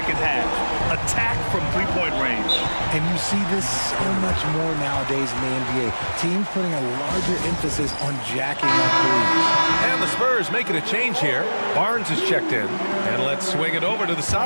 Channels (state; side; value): inverted; both; correlation -1.00